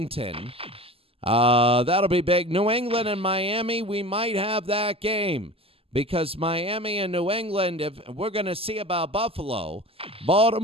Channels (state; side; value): late; left; 0.28 ms